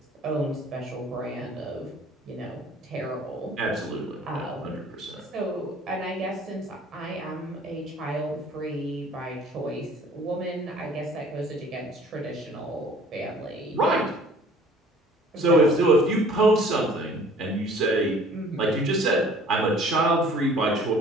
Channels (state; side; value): normal; both; correlation 0.52